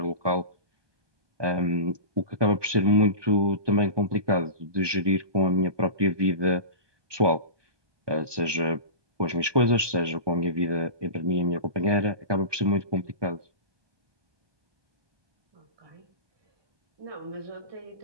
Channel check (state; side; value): late; left; 1.2 ms